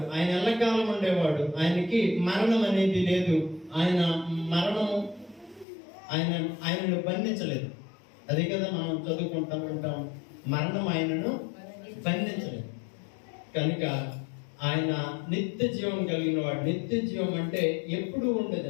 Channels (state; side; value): drops out; right; at 5.7 s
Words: ఆయన ఎల్లకాలం ఉండేవాడు, ఆయనకి మరణం అనేది లేదు. ఆయన మరణము ఆయనను బంధించలేదు. అదే కదా మనం చదువుకుంటాం ఉంటాం, మరణం ఆయనను బంధించలేదు. కనుక ఆయన నిత్య జీవం కలిగిన వాడు. నిత్య జీవం అంటే ఎప్పుడు